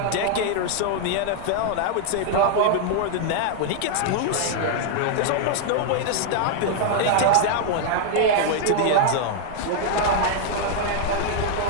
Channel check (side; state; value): both; different; correlation 0.00